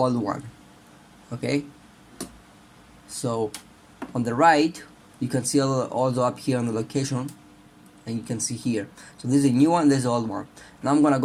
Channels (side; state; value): both; identical; correlation 1.00